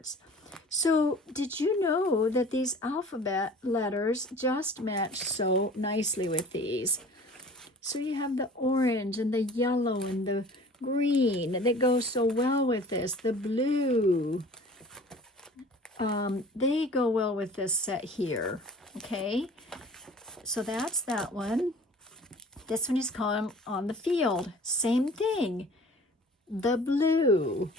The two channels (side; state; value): both; normal; correlation 0.45